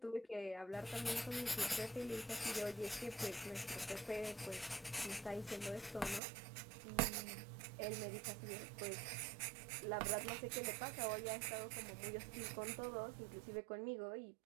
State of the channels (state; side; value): drops out; left; at 6.2 s